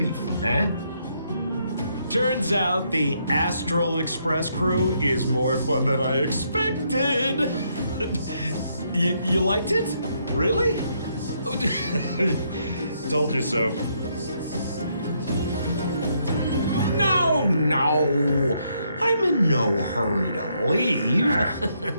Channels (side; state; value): both; inverted; correlation -0.74